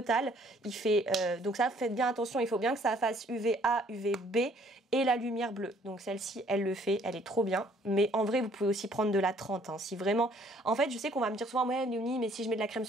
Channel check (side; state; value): both; normal; correlation 0.61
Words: Il fait, donc ça, faites bien attention, il faut bien que ça fasse UVA, UVB et la lumière bleue. Donc celle-ci, elle le fait, elle est trop bien. Mais en vrai, vous pouvez aussi prendre de la 30. Hein, si vraiment... En fait, je sais qu'on va me dire souvent, ouais, Léonie, mais si je mets de la crème